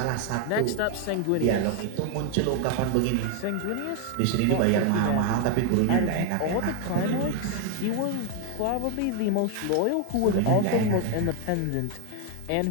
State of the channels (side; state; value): both; different; correlation 0.01